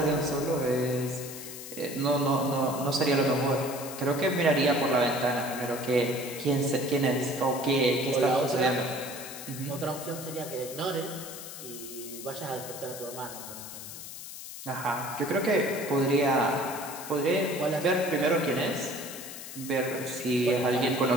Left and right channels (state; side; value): noise; left; hiss, 11 dB below the sound